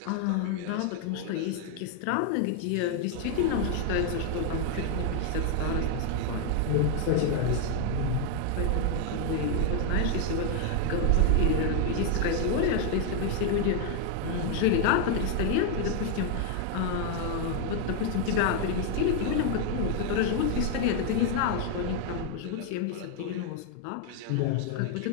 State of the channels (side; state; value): both; different; correlation 0.00